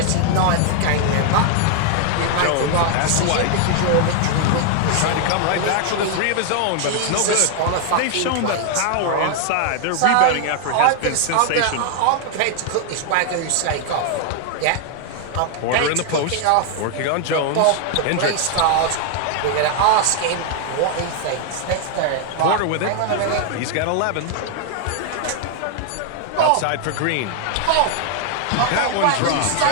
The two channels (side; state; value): both; different; correlation 0.00